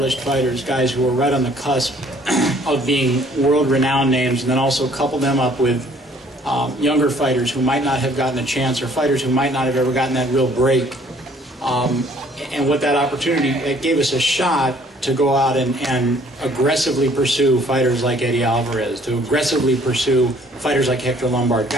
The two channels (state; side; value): normal; both; correlation 0.59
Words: fighters, guys who were right on the cusp of being world-renowned names, and then also couple them up with younger fighters who might not have gotten a chance, or fighters who might not have ever gotten that real break. And with that opportunity, it gave us a shot to go out and aggressively pursue fighters like Eddie Alvarez, to aggressively pursue fighters like Hector Lombard,